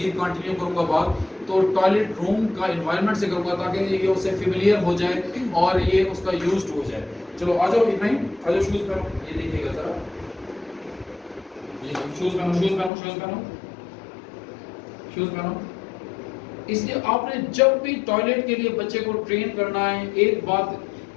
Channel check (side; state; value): right; drops out; at 12.9 s